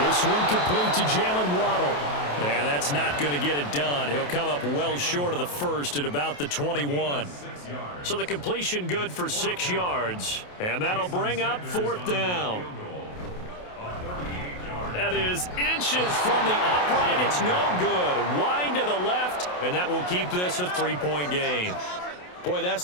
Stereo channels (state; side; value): late; right; 28 ms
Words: one complete to Jalen Waddle. And that's not going to get it done. He'll come up well short of the 1st at about the 21. So the completion good for 6 yards. And that'll bring up 4th down. That is inches from the upright. It's no good. Wide to the left. And that will keep this a 3-point game. Boy, that's